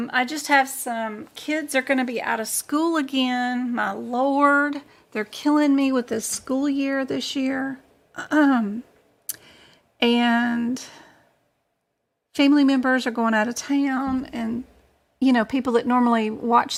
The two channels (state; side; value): identical; both; correlation 1.00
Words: just have some kids are going to be out of school again. My Lord, they're killing me with this school year this year. And family members are going out of town, and people that normally